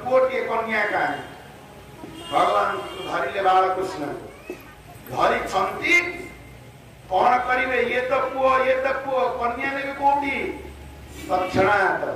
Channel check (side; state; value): both; identical; correlation 1.00